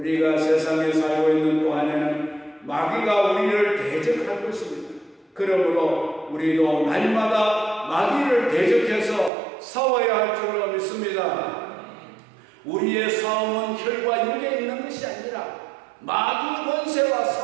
세상에 살고 있는 동안에는 마귀가 우리를 대적할 것입니다. 그러므로 우리도 날마다 마귀를 대적해서 싸워야 할 줄로 믿습니다. 우리의 싸움은 혈과 육에 있는 것이 아니라 마귀 권세와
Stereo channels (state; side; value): drops out; left; at 9.3 s